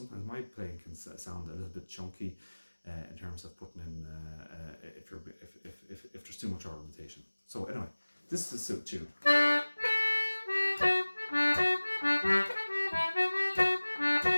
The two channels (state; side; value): inverted; both; correlation -1.00